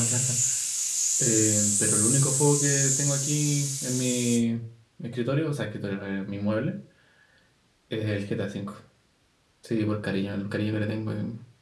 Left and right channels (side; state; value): both; identical; correlation 1.00